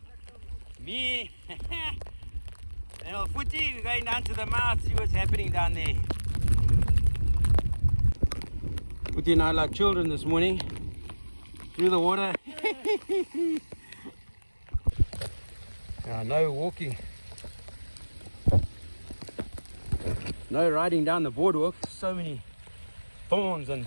Me and old Footy, we're going down to the mouth, see what's happening down there. Footy and I like children this morning. Through the water. No walking. No riding down the boardwalk. So many thorns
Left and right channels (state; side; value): inverted; both; correlation -1.00